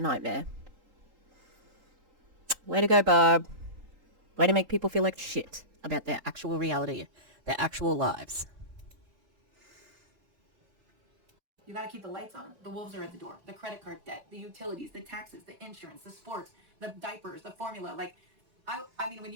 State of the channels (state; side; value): late; left; 3.8 ms